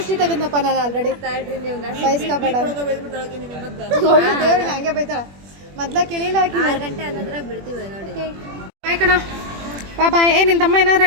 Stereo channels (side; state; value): left; late; 21 ms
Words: ತೆಗೆದ್ನಪ್ಪ ನಾನು ಆಲ್ರೆಡಿ. ಬಯಸ್ಕೋಬೇಡ. ದೇವ್ರಿಗೆ ಹಂಗೆ ಬೈತಾಳ. ಮೊದ್ಲ ಕೇಳಿಲ್ಲ. 6 ಗಂಟೆ ಅನ್ನೋದ್ರಾಗ ಬಿಡ್ತೀವಿ ನೋಡಿ. ಬಾಯ್ ಕಣ. ಬಾಯ್. ನಿನ್ನ ತಮ್ಮ ಏನಾರ